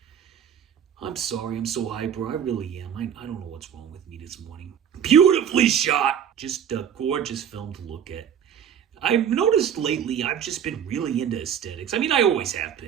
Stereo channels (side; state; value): left; quieter; 8.6 dB